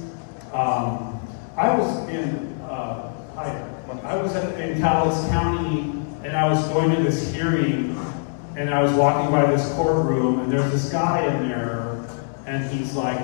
I was in Taos County, and I was going to this hearing, and I was walking by this courtroom, and there's this guy in there, and he's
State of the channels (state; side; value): silent; right; digital silence